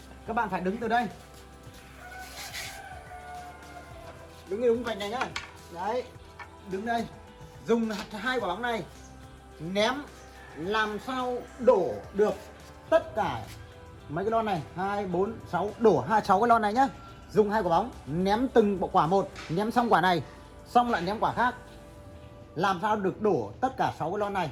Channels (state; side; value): identical; both; correlation 1.00